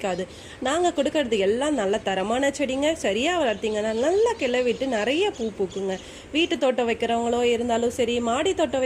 நாங்கள் கொடுக்கறது எல்லாம் நல்ல தரமான செடிங்க. சரியாக வளர்த்திங்கன்னா நல்லா கிளவிட்டு நிறைய பூ பூக்குங்க. வீட்டு தோட்டம் வைக்கிறவங்களோ இருந்தாலும் சரி, மாடி தோட்டம்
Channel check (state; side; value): identical; both; correlation 1.00